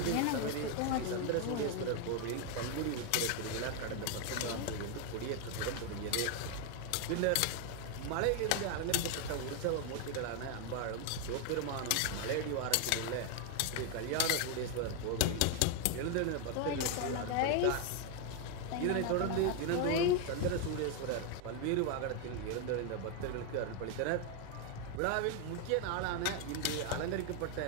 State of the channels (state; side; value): different; both; correlation 0.01